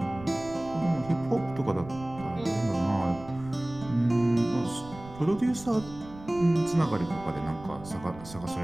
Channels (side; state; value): right; noise; rumble, 17 dB below the sound